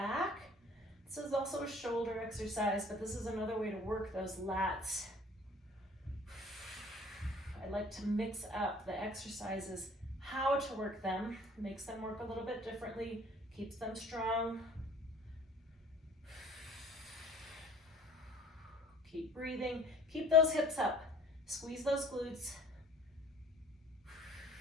This is also a shoulder exercise, but this is another way to work those lats. I like to mix up the exercises, how to work them, makes them work a little bit differently, keeps them strong. Keep breathing, keep those hips up, squeeze those glutes.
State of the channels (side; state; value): both; normal; correlation 0.51